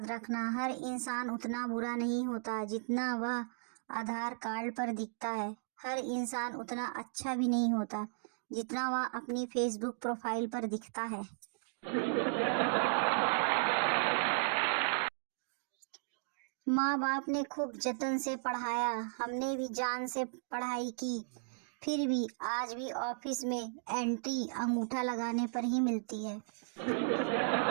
रखना, हर इंसान उतना बुरा नहीं होता जितना वह आधार कार्ड पर दिखता है। हर इंसान उतना अच्छा भी नहीं होता जितना वह अपनी फेसबुक प्रोफाइल पर दिखता है। माँ बाप ने खूब जतन से पढ़ाया, हमने भी जान से पढ़ाई की, फिर भी आज भी ऑफिस में एंट्री अंगूठा लगाने पर ही मिलती है।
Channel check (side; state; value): left; silent; digital silence